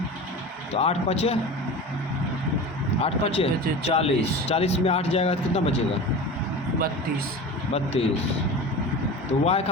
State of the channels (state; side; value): normal; both; correlation 0.32